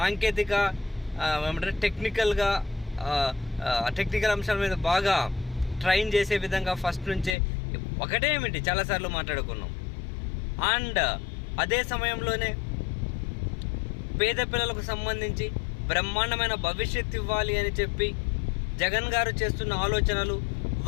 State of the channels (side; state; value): right; drops out; at 7.4 s